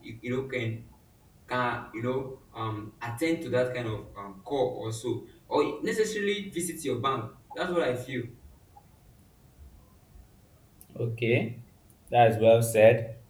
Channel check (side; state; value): both; identical; correlation 1.00